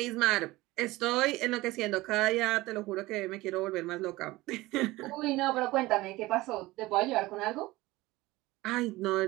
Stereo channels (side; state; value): left; quieter; 19.5 dB